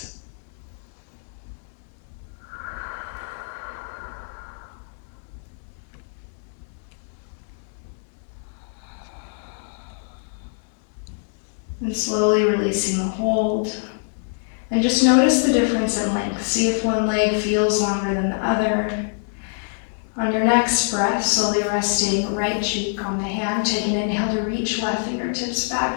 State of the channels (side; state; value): right; silent; digital silence